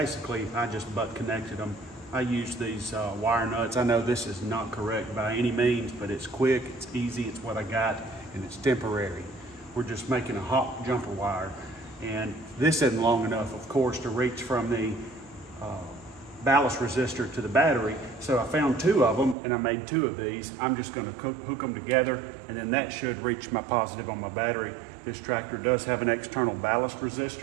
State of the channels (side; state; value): left; drops out; at 19.4 s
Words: I just butt connected them. I used these wire nuts. I know this is not correct by any means, but it's quick, it's easy, it's what I got, and it's temporary. We're just making a hot jumper wire, and this isn't long enough, of course, to reach from the ballast resistor to the battery. So I found 2 of them, and I made 2 of these. I'm just going to hook them together, and then that should reach my positive on my battery. This tractor does have an external ballast